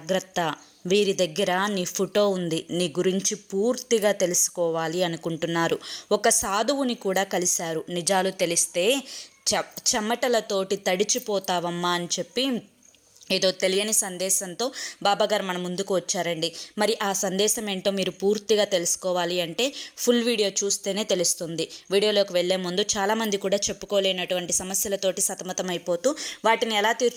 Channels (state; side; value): identical; both; correlation 1.00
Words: వీరి దగ్గర నీ ఫోటో ఉంది, నీ గురించి పూర్తిగా తెలుసుకోవాలి అనుకుంటున్నారు. ఒక సాధువుని కూడా కలిశారు. నిజాలు తెలిస్తే చెమటలతోటి తడిచిపోతావమ్మా అని చెప్పి ఏదో తెలియని సందేశంతో బాబాగారు మన ముందుకు వచ్చారండి. మరి ఆ సందేశం ఏంటో మీరు పూర్తిగా తెలుసుకోవాలి అంటే ఫుల్ వీడియో చూస్తేనే తెలుస్తుంది. వీడియోలోకి వెళ్లే ముందు చాలామంది కూడా చెప్పుకోలేనటువంటి సమస్యలతోటి సతమతం అయిపోతూ వాటిని ఎలా